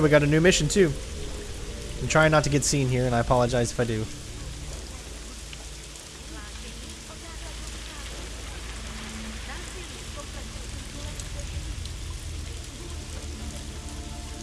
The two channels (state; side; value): identical; both; correlation 1.00